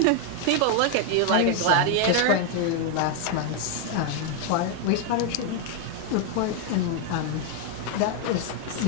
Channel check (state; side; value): different; both; correlation 0.01